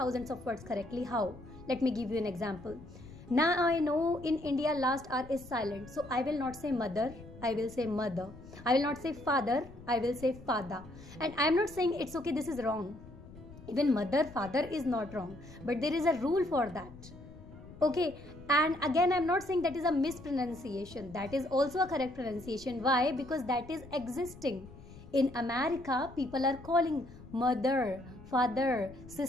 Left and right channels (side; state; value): left; noise; rumble, 18 dB below the sound